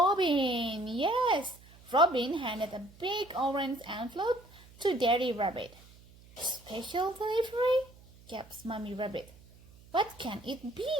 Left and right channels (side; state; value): right; noise; hum, 24 dB below the sound